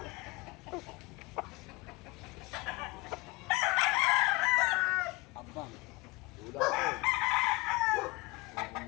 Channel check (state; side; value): quieter; right; 22.7 dB